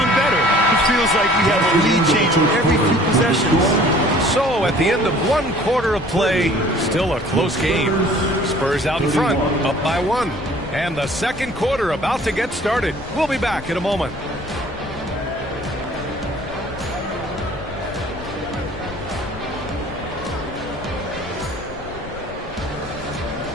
better. It feels like we have a lead change every few possessions. So at the end of one quarter of play, still a close game. Spurs out in front, up by 1. And the second quarter about to get started. We'll be back in a moment.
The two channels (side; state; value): left; noise; rumble, 15 dB below the sound